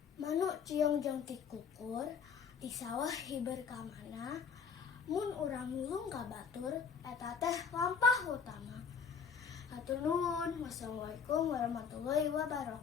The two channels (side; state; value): right; quieter; 6.4 dB